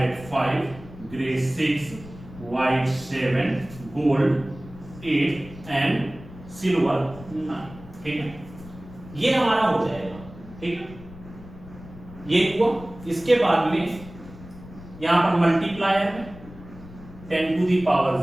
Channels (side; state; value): left; noise; rumble, 17 dB below the sound